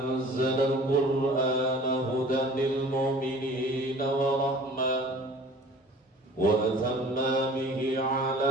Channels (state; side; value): normal; both; correlation 0.46